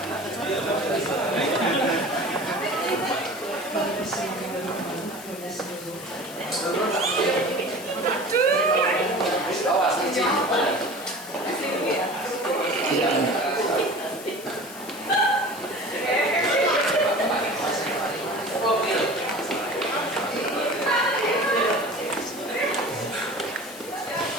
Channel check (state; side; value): noise; left; hiss, 15 dB below the sound